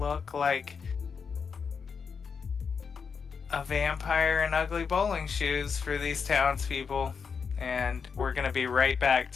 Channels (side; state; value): right; quieter; 5.9 dB